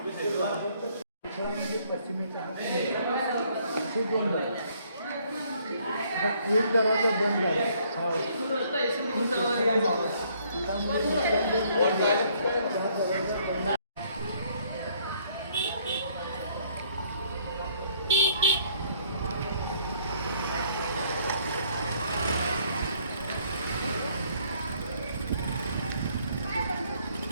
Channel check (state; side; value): inverted; both; correlation -0.64